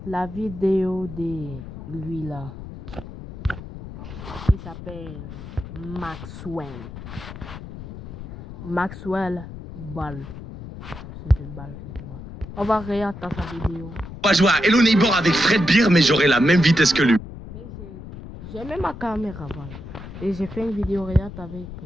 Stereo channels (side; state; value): left; noise; rumble, 12 dB below the sound